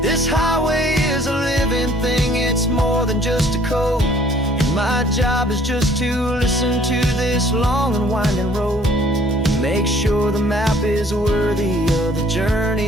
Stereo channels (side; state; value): both; normal; correlation 0.57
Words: This highway is a living thing, it's more than just a code. And my job is just to listen to this long and winding road, make sure the map is worthy of the journey